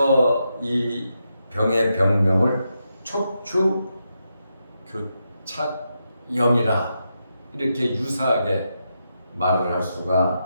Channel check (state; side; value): inverted; both; correlation -0.85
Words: 이 병의 병명을 척추교착염이라 이렇게 유사하게 말을 할